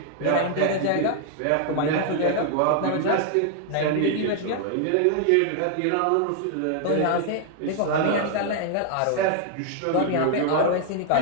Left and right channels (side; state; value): both; different; correlation 0.00